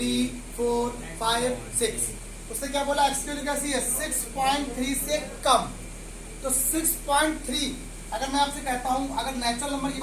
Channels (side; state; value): both; identical; correlation 1.00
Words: 4 5 6। उसने क्या बोला? x की वैल्यू कैसी है? 6.3 से कम। तो 6.3 अगर मैं आपसे कहता हूं, अगर नेचुरल नंबर की